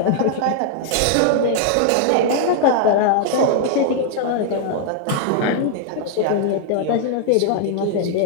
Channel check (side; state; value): both; different; correlation -0.01